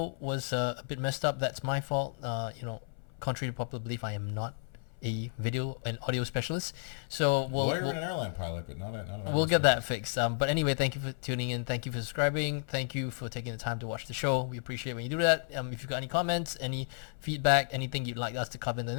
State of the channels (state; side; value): silent; right; 56 dB below the other